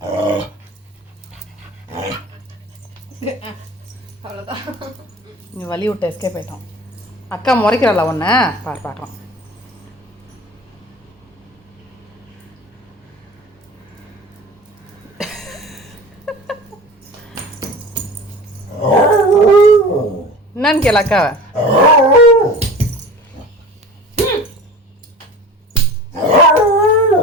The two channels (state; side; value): normal; both; correlation 0.38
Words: அவ்வளோதான். நீ வலி விட்டு எஸ்கேப் ஆயிட்டோம். அக்கா முறைக்கிறாளா ஒன்று பார்க்கலாம். என்னன்னு கேள அக்காவை.